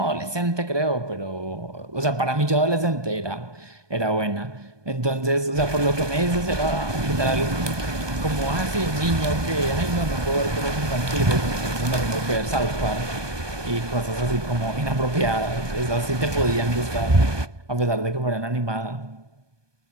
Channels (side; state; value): left; late; 1.2 ms